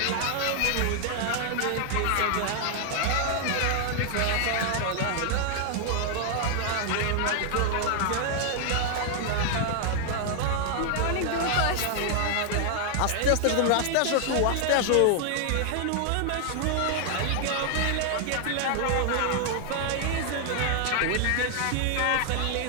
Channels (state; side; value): different; both; correlation 0.00